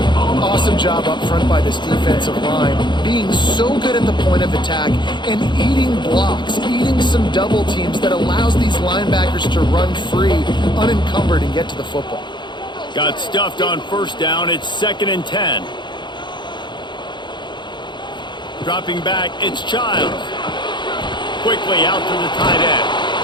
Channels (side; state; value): right; late; 0.22 ms